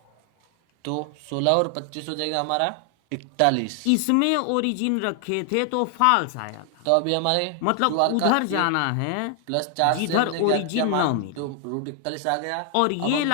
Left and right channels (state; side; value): different; both; correlation 0.00